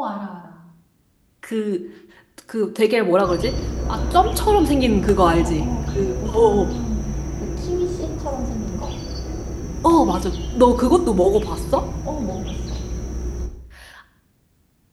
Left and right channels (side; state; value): both; identical; correlation 1.00